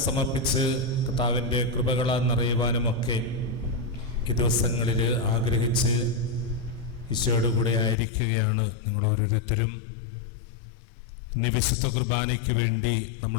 സമർപ്പിച്ച് കർത്താവിൻ്റെ കൃപകളാൽ നിറയുവാനുമൊക്കെ ഈ ദിവസങ്ങളിൽ ആഗ്രഹിച്ച് ഈശോയുടെ കൂടെ ആയിരിക്കുകയാണ് നിങ്ങൾ ഓരോരുത്തരും. ഇനി വിശുദ്ധ കുർബാനയ്ക്ക് വേണ്ടി നമ്മൾ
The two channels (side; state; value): right; drops out; at 8.0 s